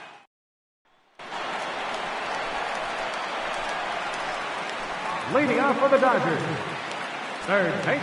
Leading off for the Dodgers, third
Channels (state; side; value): identical; both; correlation 1.00